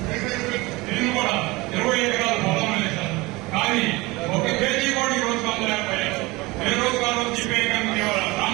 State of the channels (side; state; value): left; quieter; 22.4 dB